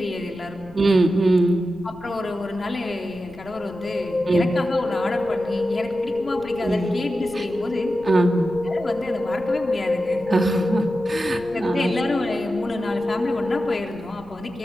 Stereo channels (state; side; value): noise; left; rumble, 22 dB below the sound